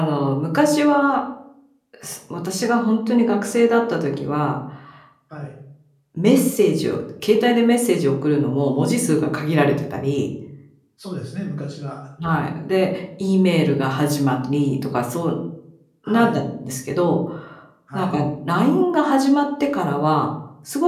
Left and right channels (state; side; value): identical; both; correlation 1.00